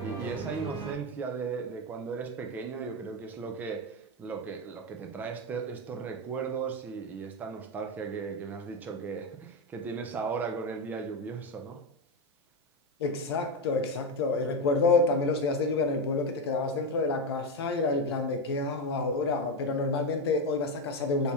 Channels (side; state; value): both; normal; correlation 0.11